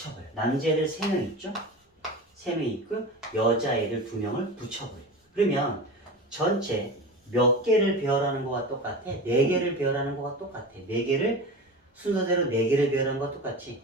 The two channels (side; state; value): both; normal; correlation 0.29